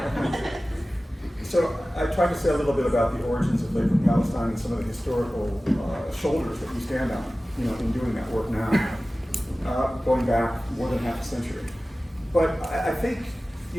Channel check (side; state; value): both; normal; correlation 0.96